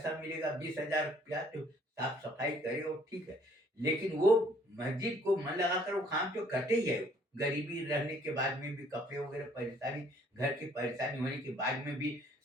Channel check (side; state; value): both; normal; correlation 0.60